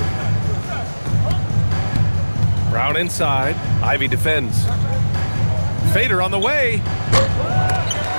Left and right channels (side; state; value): both; inverted; correlation -1.00